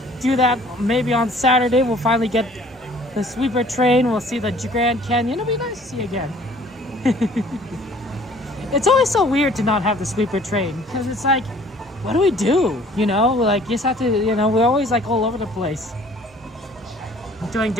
do that maybe on Saturday. We'll finally get the sweeper train. We'll see the Grand Canyon. It'll be nice to see again. It's always so weird to not have the sleeper train because it's like, what do we do? You know, like you just have to, you know, we're always like all over the place doing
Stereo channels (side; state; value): both; normal; correlation 0.54